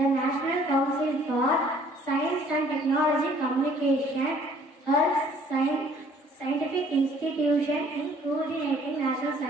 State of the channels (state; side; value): normal; both; correlation 0.58